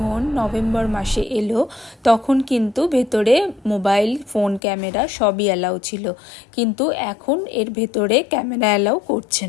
নভেম্বর মাসে এলো তখন কিন্তু ভেতরে মোবাইল ফোন ক্যামেরা সবই অ্যালাউ ছিল, কিন্তু এখন এর ভেতরে ক্যামেরা অ্যালাউ করছে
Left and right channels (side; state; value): right; drops out; at 4.6 s